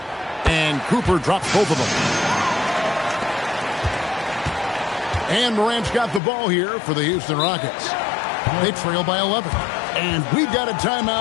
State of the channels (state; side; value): drops out; right; at 6.2 s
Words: And Cooper drops both of them. And Morant's got the ball here for the Houston Rockets. They trail by 11. And we've got a